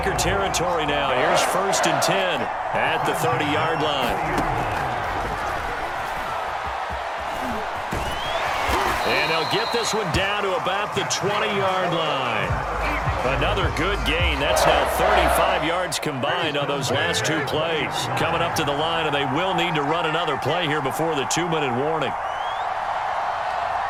territory now. Here's 1st and 10 at the 30-yard line. And they'll get this one down to about the 20-yard line. Another good gain. That's now 35 yards combined on those last 2 plays. Coming up to the line, and they will need to run another play here before the 2-minute warning.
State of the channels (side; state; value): both; identical; correlation 1.00